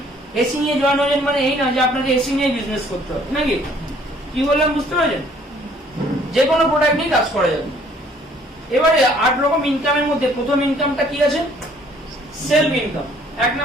এসি নিয়ে জয়েন হয়েছেন মানে এই না যে আপনাকে এসি নিয়ে বিজনেস করতে হবে, নাকি? কি বললাম বুঝতে পারছেন? যে কোনো প্রোডাক্ট নিয়ে কাজ করা যাবে। এবারে 8 রকম ইনকামের মধ্যে প্রথম ইনকামটা কি আছে? Self income. 1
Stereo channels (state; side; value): normal; both; correlation 0.60